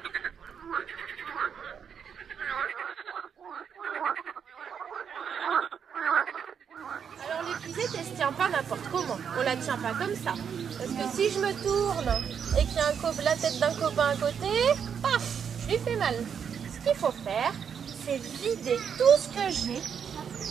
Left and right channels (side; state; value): left; quieter; 7.4 dB